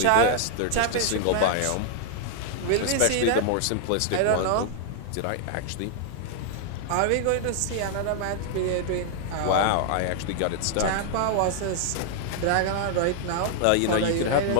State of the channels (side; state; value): both; different; correlation 0.00